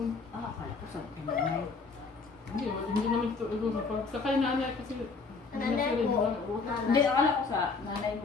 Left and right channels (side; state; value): right; quieter; 4.4 dB